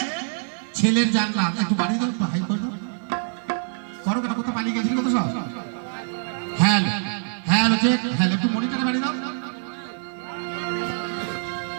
ছেলের জান্নাত। একটু বাড়ি দাও, একটু হাই করে দাও, করো কেন, কোথাও পালিয়ে গেছি কত সব। হ্যাঁ হ্যাঁ চেক, হ্যাঁ একটু মনিটরে বাড়ি দাও,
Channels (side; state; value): left; silent; digital silence